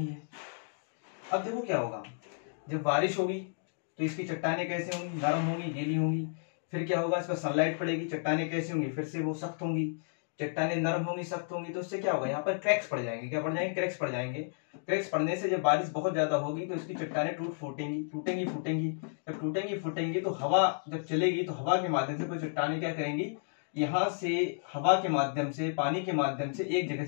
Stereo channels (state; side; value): silent; right; digital silence